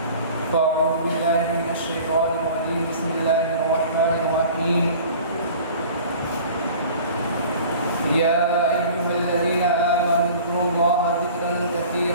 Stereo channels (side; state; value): both; inverted; correlation -0.44